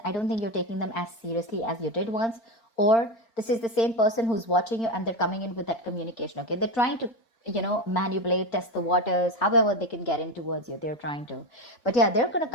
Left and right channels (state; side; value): late; right; 4.4 ms